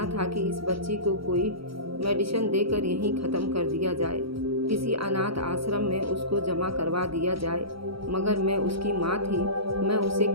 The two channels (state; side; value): late; left; 0.75 ms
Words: था कि इस बच्ची को कोई मेडिसिन देकर यहीं ख़त्म कर दिया जाए, किसी अनाथ आश्रम में उसको जमा करवा दिया जाए। मगर मैं उसकी माँ थी, मैं उसे